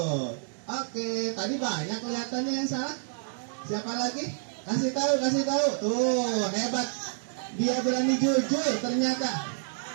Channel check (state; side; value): silent; left; digital silence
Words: Oke, tadi banyak kelihatannya yang salah. Siapa lagi? Kasih tahu. Tuh, hebat. Dia berani jujur ternyata.